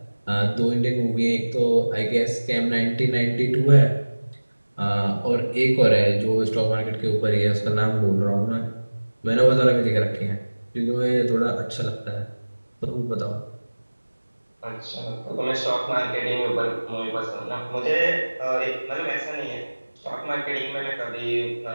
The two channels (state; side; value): inverted; both; correlation -1.00